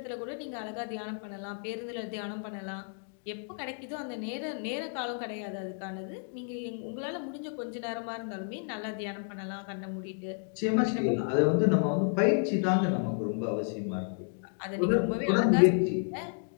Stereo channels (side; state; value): right; silent; 57 dB below the other